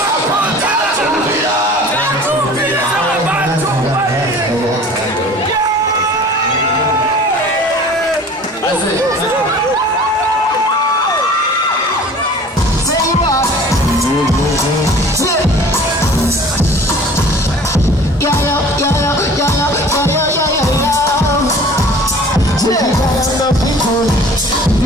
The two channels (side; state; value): both; normal; correlation 0.46